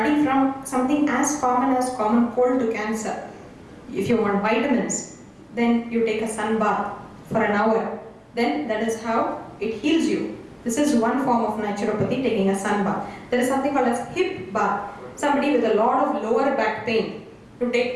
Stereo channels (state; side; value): identical; both; correlation 1.00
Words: from something as common cold to cancer. If you want vitamins, then you take a sun bath for an hour. Then that is how it heals you. This is one form of naturopathy, taking a sun bath. There is something called as hip bath. Somebody with a lot of lower back pain, to